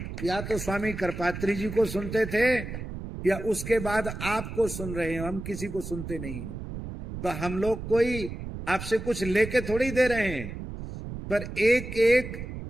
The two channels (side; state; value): right; noise; rumble, 8 dB below the sound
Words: या तो स्वामी करपात्री जी को सुनते थे या उसके बाद आपको सुन रहे हैं, हम किसी को सुनते नहीं हैं। तो हम लोग कोई आपसे कुछ लेके थोड़ी दे रहे हैं, पर एक एक